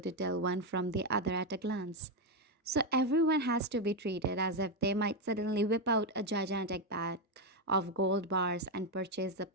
to tell one from the other at a glance. So everyone has to be treated as if they might suddenly whip out a gigantic bag of gold bars and purchase the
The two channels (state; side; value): normal; both; correlation 0.06